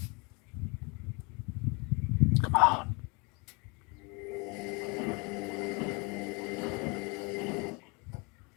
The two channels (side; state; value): right; quieter; 29.7 dB